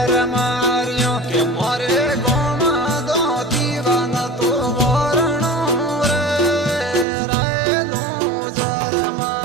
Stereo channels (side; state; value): left; drops out; at 7.1 s